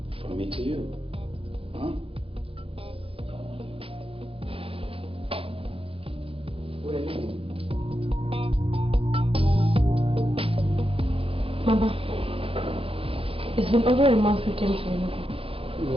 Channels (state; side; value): late; left; 0.27 ms